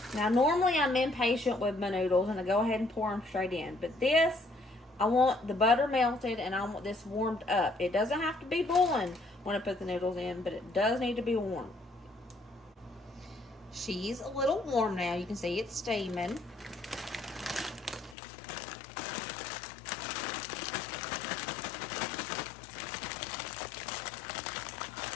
Now, normally I'm impatient with my noodles and I go ahead and pour them straight in. But this, I want the butter melted and I want this warmed up. It doesn't have to be boiling when I put the noodles in, but it does need to be warm. She's a little warm now. You can see it's steaming.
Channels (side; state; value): right; drops out; at 18.2 s